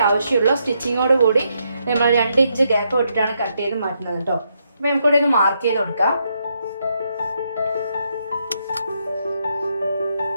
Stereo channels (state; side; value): inverted; both; correlation -0.78